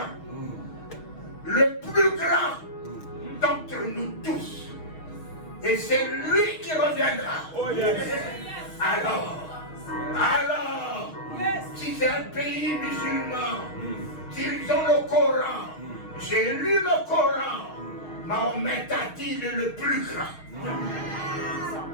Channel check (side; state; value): right; late; 6.2 ms